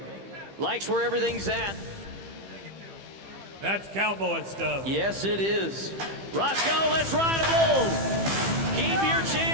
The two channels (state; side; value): late; left; 15 ms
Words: Likes where everything's at. That's cowboy stuff. Yes, it is. Roscoe, let's ride a bull. Keep your